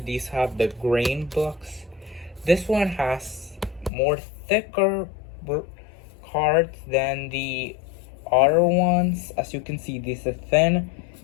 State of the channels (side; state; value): right; drops out; at 3.9 s